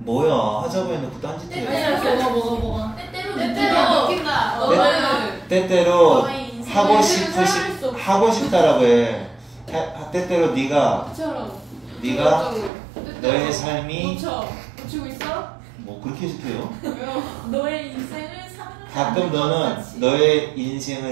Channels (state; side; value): drops out; left; at 12.7 s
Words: 하자고 해놓고 딴짓 해. 뭐가? 때때로 느낀다. 너는 때때로 너의 인생을 하고 싶다라고 해. 때때로 네가 너의 삶이 고치고 있어? 뭐 그렇게 해석해요? 너의 인생을 사랑하지 가끔 너는 같이. 너의